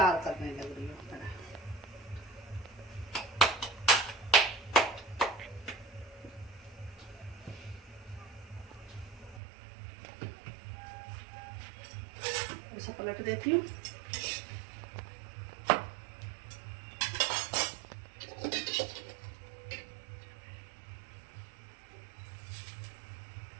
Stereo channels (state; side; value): drops out; left; at 9.4 s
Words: करने लग रही हूँ। इसे पलट देती हूँ।